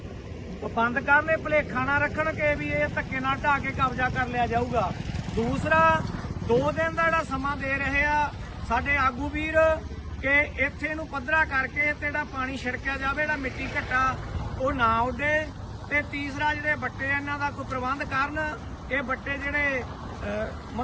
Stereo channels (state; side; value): identical; both; correlation 1.00